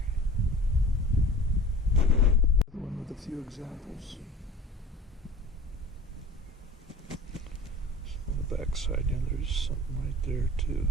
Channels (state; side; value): normal; both; correlation 0.41